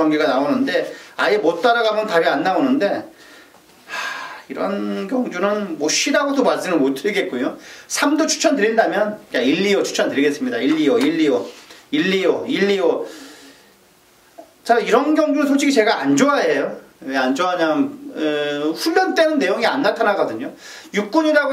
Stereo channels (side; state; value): both; identical; correlation 1.00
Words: 나오는데 아예 못 따라가면 답이 안 나오는데 이런 경주는 뭐 쉬라고도 말씀을 못 드리겠고요. 3도 추천드린다면 1, 2호 추천드리겠습니다. 1, 2호 자, 이런 경주는 솔직히 제가 안 좋아해요. 왜 안 좋아하냐면 훈련 때는 내용이 안 나타나거든요.